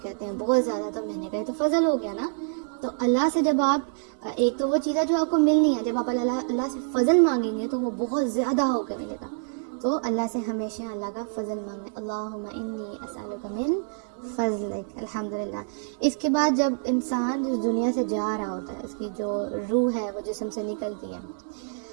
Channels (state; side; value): silent; left; digital silence